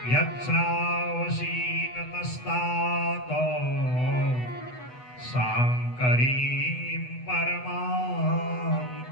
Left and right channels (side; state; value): right; late; 8.1 ms